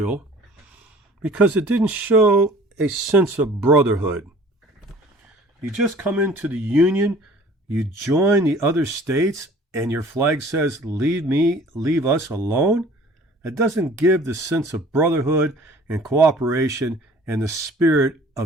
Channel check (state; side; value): normal; both; correlation 0.50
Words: because it didn't show a sense of brotherhood. You just come into the Union, you join the other states, and your flag says, leave us alone. It doesn't give the sense of brotherhood and cooperation and the spirit